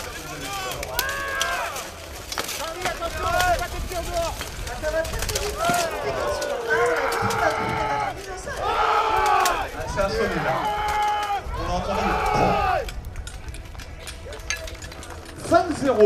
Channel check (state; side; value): identical; both; correlation 1.00